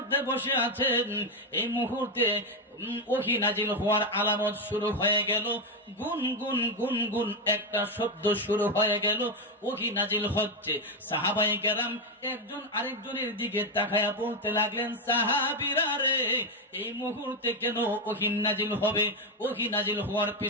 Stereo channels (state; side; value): normal; both; correlation 0.07